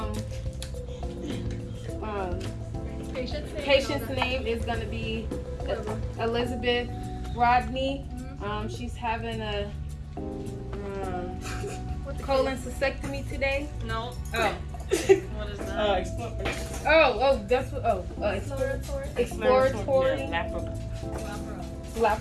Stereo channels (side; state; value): both; identical; correlation 1.00